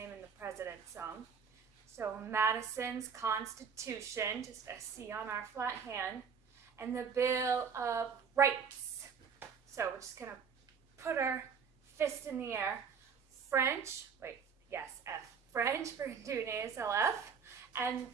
in the President's song. So Madison's Constitution, just a C on our flat hand, and the Bill of Rights. So we're just going to put our fist in the air. French, F. French, we're going to do an ASLF, and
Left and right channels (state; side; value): quieter; left; 6.3 dB